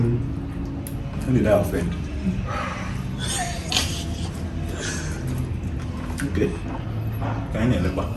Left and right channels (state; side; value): identical; both; correlation 1.00